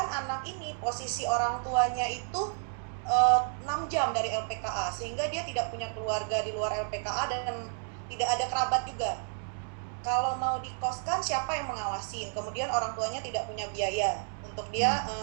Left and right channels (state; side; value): silent; left; 57 dB below the other